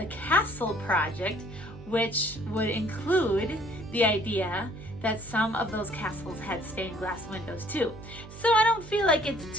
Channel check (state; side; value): noise; right; hum, 16 dB below the sound